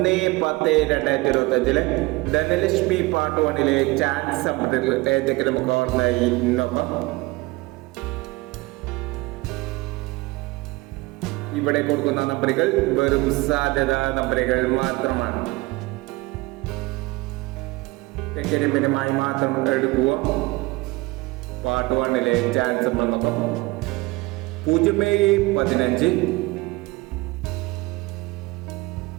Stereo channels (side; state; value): left; quieter; 22.6 dB